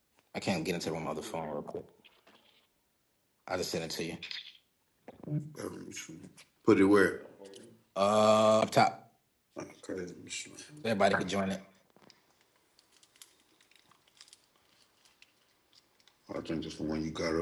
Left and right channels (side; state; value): both; identical; correlation 1.00